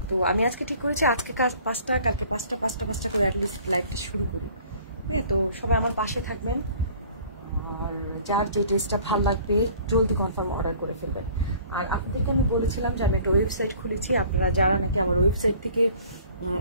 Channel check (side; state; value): both; inverted; correlation -0.51